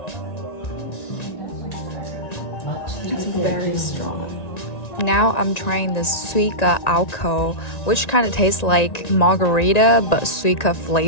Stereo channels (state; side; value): late; right; 1.9 ms